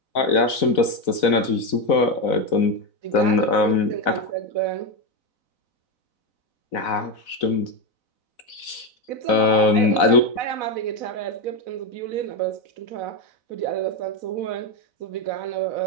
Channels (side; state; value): right; late; 4.0 ms